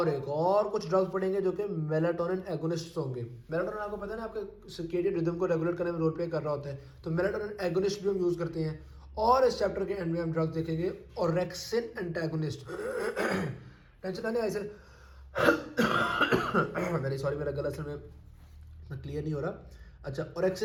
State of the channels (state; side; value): identical; both; correlation 1.00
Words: एक और कुछ ड्रग्स पड़ेंगे जो कि मेलाटोनिन एगोनिस्ट होंगे। मेलाटोनिन आपको पता है ना, आपके सर्केडियन रिदम को रेगुलेट करने में रोल प्ले कर रहा होता है, तो मेलाटोनिन एगोनिस्ट भी हम यूज़ करते हैं। और इस चैप्टर के एंड में हम ड्रग्स देखेंगे ऑरेक्सिन एंटागोनिस्ट। टेंशन आने ऐसे। वेरी सॉरी, मेरा गला असल में क्लियर नहीं हो रहा। अच्छा,